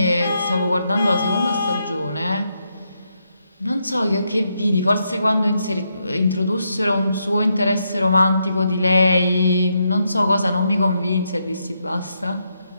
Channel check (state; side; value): inverted; both; correlation -0.80